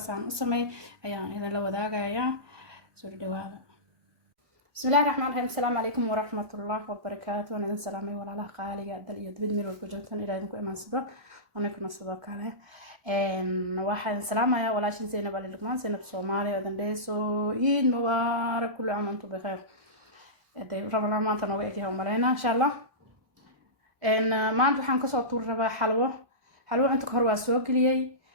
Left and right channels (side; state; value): left; late; 1.3 ms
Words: عن أسمي أيام إذا لو ذاك أيام سوري دواء بسم الله الرحمن الرحيم السلام عليكم ورحمة الله وبركاته أنا سلامي ولا لا قالي دل يدبد ميرو كجلتن إلى إنكم إيمان صدق ونكون صدق عليه واحد سلام يا ولا شيء زينب على لقمان زينب سومالي أذن ديسو عيد مبارك كل عام وأنتم بخير ربنا ما تنوعك يوم مرينا إن شاء الله ما أنتم حنكسر طول ربع حلوة أنتم كهرباء سوق لي